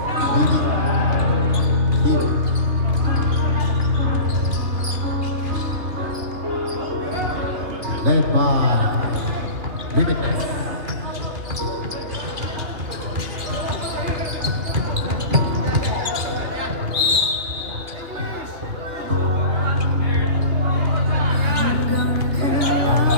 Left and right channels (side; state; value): left; late; 2.8 ms